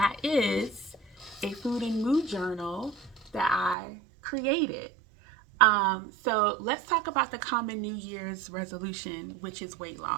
is a food and mood journal that I created. So let's talk about the common New Year's resolution, which is weight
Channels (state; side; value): drops out; left; at 3.8 s